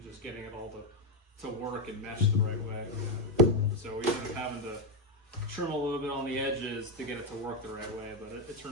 just getting it all to to work and mesh the right way. So we ended up having to trim a little bit on the edges to get it to work the right way, but it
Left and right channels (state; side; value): normal; both; correlation 0.06